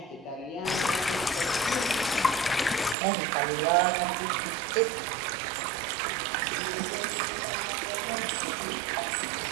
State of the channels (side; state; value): left; drops out; at 3.0 s